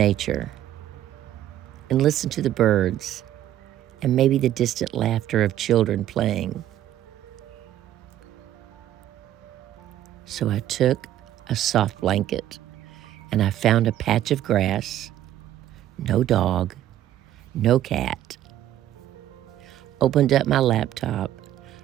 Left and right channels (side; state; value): left; quieter; 12.4 dB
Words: and listen to the birds and maybe the distant laughter of children playing? So I took a soft blanket and I found a patch of grass, no dog, no cat. Opened up my laptop,